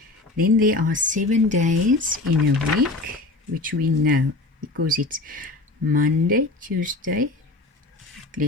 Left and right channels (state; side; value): quieter; right; 3.1 dB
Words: Then there are 7 days in a week, which we know because it's Monday, Tuesday.